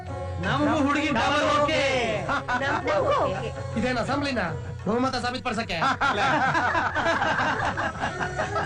ನಮಗೂ ಹುಡುಗಿ ಡಬಲ್ ಓಕೆ. ಇದೇನ ಅಸೆಂಬ್ಲಿನ ಬಹುಮತ ಸಾಬೀತುಪಡಿಸಕ್ಕೆ?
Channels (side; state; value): both; identical; correlation 1.00